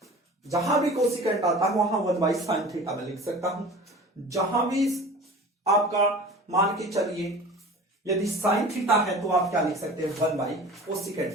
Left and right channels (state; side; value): normal; both; correlation 0.39